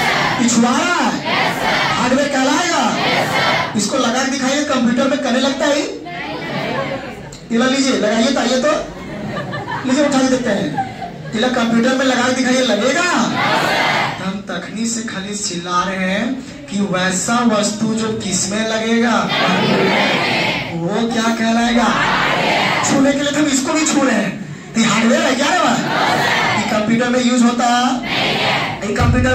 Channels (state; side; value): identical; both; correlation 1.00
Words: छुआ रहा है, हार्डवेयर कहलाएगा। इसको लगा के दिखाइए, कंप्यूटर में करने लगता है। इला लीजिए, लगाइए तो, आइए तो लीजिए, उठा के देखते हैं। इला कंप्यूटर में लगा के दिखाइए, लगेगा? हम तखनी से खाली चिल्ला रहे हैं कि वैसा वस्तु जो किसमें लगेगा, वो क्या कहलाएगा? छूने के लिए तो हम इसको भी छू रहे हैं, ये हार्डवेयर है क्या है? ये कंप्यूटर में यूज होता, ये कंप्यूटर